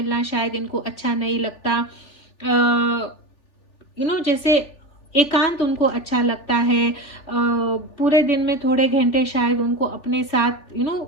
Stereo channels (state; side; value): late; right; 3.4 ms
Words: शायद इनको अच्छा नहीं लगता। जैसे एकांत उनको अच्छा लगता है। पूरे दिन में थोड़े घंटे शायद उनको अपने साथ